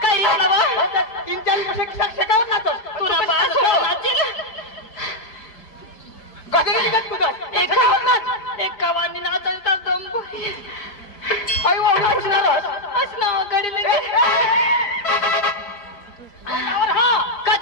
तीन चार शेकावर नाचत तुला एकावानी नाचायचा दम असना गडी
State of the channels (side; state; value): right; late; 5.0 ms